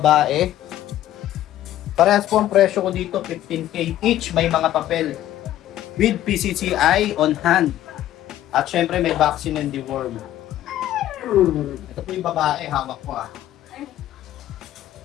Parehas po ang presyo ko dito, 15K each, may mga papel. With PCCI on hand. At syempre may vaccine and deworm. Ito po yung babae, hawak ko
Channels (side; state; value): right; quieter; 13.1 dB